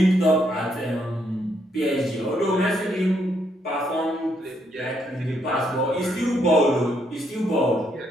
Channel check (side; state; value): both; normal; correlation 0.74